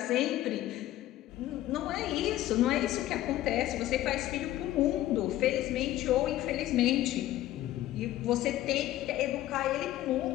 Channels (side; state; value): right; quieter; 14.3 dB